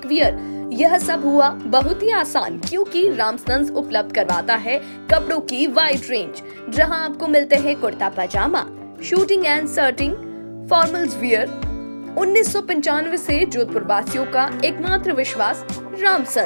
वियर, यह सब हुआ बहुत ही आसान, क्योंकि रामसन्स उपलब्ध करवाता है कपड़ों की वाइड रेंज, जहां आपको मिलते हैं kurta pyjama, suiting and shirting, formals wear. 1995 से जोधपुर वासियों का एकमात्र विश्वास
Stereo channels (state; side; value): inverted; both; correlation -1.00